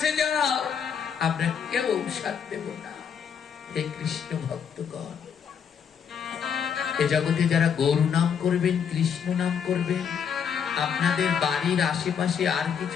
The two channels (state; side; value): quieter; right; 7.4 dB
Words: যাও, আমরা কেউ ঔষধ দেব না। হে কৃষ্ণ ভক্তগণ, এ জগতে যারা গৌর নাম করবেন, কৃষ্ণ নাম করবেন, আপনাদের বাড়ির আশেপাশে আর